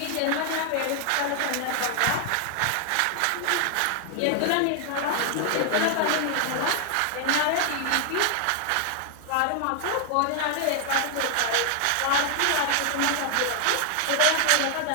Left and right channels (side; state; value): both; different; correlation 0.00